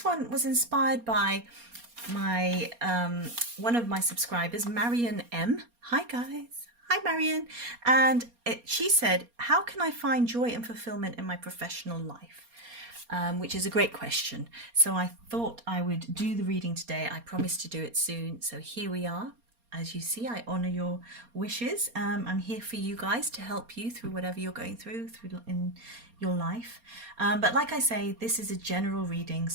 one was inspired by my one of my subscribers, Marion M. Hi guys. Hi Marion. And she said, how can I find joy and fulfillment in my professional life? Which is a great question. So I thought I would do the reading today. I promised to do it soon. So here we are. As you see, I honor your wishes. I'm here for you guys to help you through whatever you're going through in your life. But like I say, this is a general reading.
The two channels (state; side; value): late; left; 4.3 ms